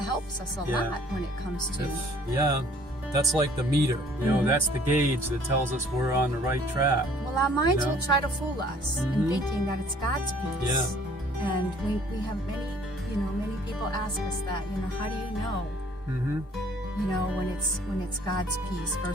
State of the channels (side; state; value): both; normal; correlation 0.57